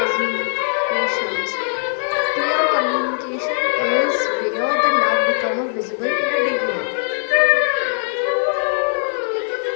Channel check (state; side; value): silent; right; digital silence